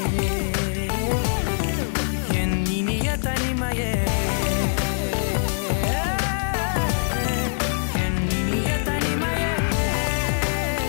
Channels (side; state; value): right; silent; digital silence